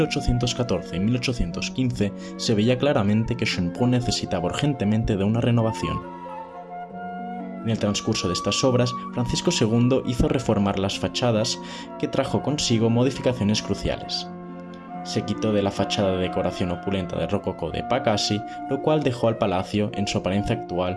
y 1815, se veía claramente que Schönbrunn necesitaba urgentemente de una renovación. En el transcurso de estas obras, Francisco II hizo reformar las fachadas, que trajo consigo modificaciones cruciales. Se quitó de la fachada de decoración opulenta de rococó de Pacassi, lo cual dejó al palacio en su apariencia actual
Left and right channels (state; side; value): identical; both; correlation 1.00